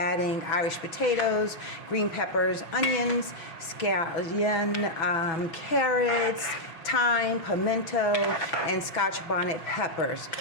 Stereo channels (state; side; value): late; right; 6.1 ms